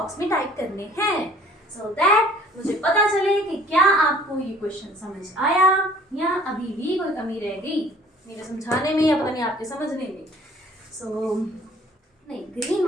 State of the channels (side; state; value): both; normal; correlation 0.53